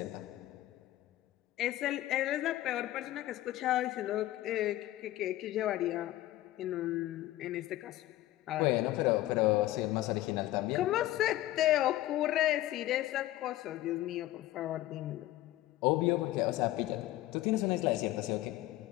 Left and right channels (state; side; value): quieter; right; 15.6 dB